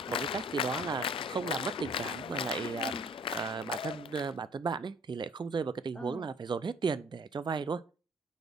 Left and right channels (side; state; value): both; normal; correlation 0.54